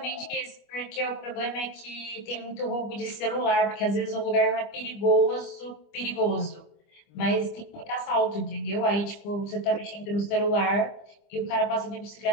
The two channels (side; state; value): right; late; 25 ms